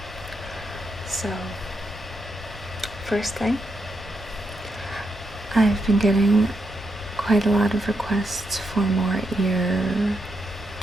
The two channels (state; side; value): normal; both; correlation 0.82